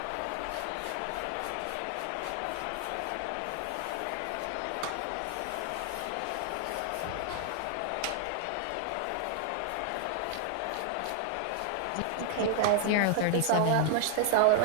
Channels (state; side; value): different; both; correlation 0.00